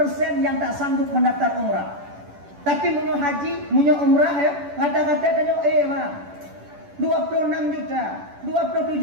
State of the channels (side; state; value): left; late; 10 ms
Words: yang tak sanggup mendaftar umrah. Tapi munyo haji, munyo umrah ya, kata-kata tanyo bang 26 juta,